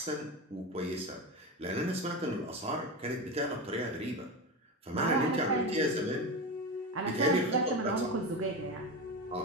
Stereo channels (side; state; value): both; normal; correlation 0.21